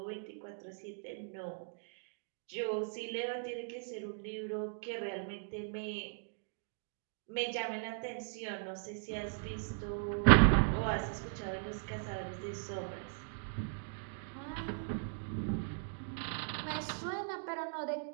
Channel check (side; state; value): left; silent; digital silence